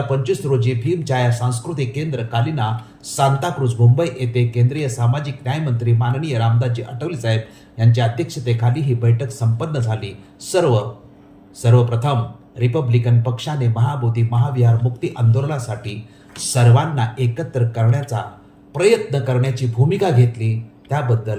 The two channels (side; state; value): both; identical; correlation 1.00